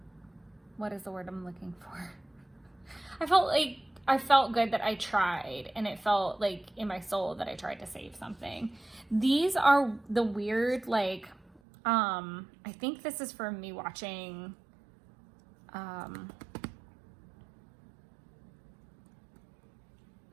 what is the word I'm looking for? I felt good that I tried, and it felt like in my soul that I tried to save something. These are the weird, like, I think this is from me watching,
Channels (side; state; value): left; drops out; at 11.6 s